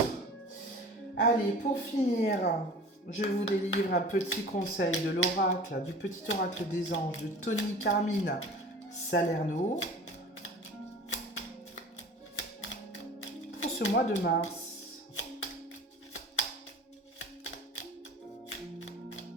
Allez, pour finir, je vous délivre un petit conseil de l'oracle, du petit oracle des anges de Tony Carmine Salerno. Pour ce mois de mars.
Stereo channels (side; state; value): both; normal; correlation 0.41